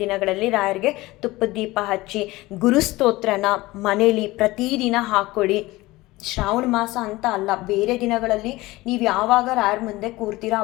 ದಿನಗಳಲ್ಲಿ ರಾಯರಿಗೆ ತುಪ್ಪದ ದೀಪ ಹಚ್ಚಿ ಗುರುಸ್ತೋತ್ರನ ಮನೇಲಿ ಪ್ರತಿದಿನ ಹಾಕ್ಕೊಳ್ಳಿ. ಶ್ರಾವಣ ಮಾಸ ಅಂತ ಅಲ್ಲ, ಬೇರೆ ದಿನಗಳಲ್ಲಿ ನೀವು ಯಾವಾಗ ರಾಯರ ಮುಂದೆ ಕೂರ್ತೀರೋ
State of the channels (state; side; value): quieter; right; 19.5 dB